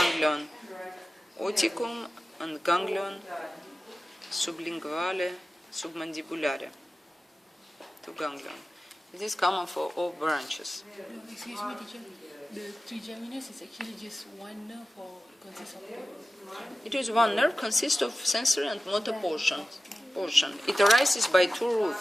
oticum and ganglion sublinguale, submandibulare. 2 ganglion. It is common for all branches. Excuse me, teacher. The trigeminus is actually just one nerve or consists of two? It is 1 nerve, consists of sensory and motor portion. It arises by 2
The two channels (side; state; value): both; normal; correlation 0.95